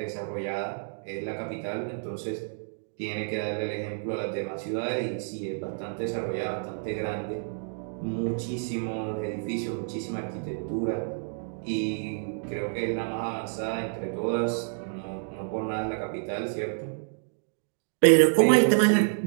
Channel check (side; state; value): left; silent; digital silence